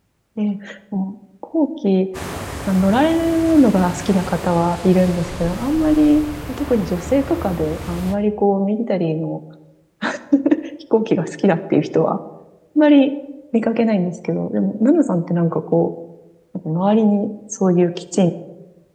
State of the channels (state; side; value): identical; both; correlation 1.00